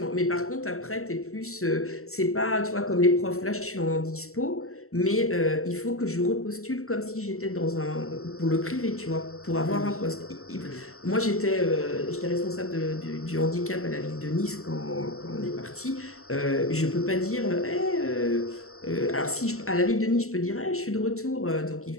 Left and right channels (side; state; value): right; late; 0.63 ms